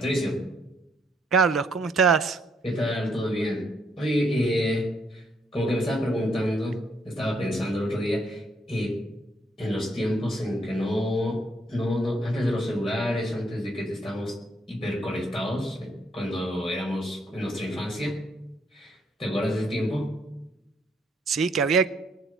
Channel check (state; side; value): normal; both; correlation 0.71